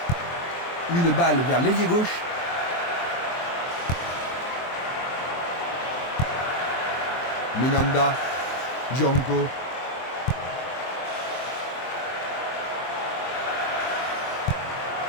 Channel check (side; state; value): right; late; 23 ms